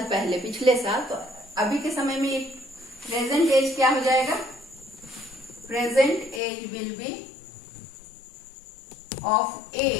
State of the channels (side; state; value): right; drops out; at 6.4 s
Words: पहले पिछले साल, तो अभी के समय में प्रेजेंट एज क्या हो जाएगा, present age will be of